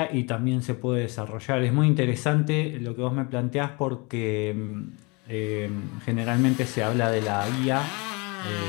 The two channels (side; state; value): right; quieter; 28.8 dB